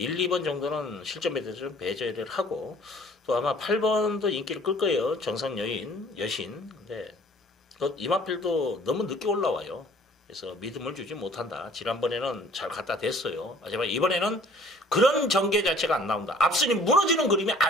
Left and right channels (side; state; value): both; normal; correlation 0.54